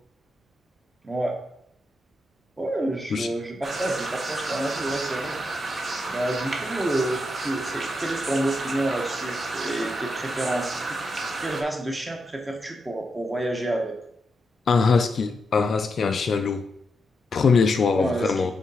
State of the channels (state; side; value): normal; both; correlation 0.84